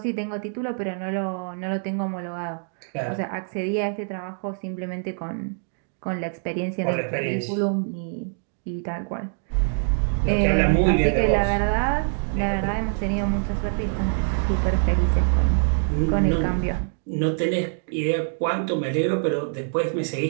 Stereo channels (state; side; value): silent; left; digital silence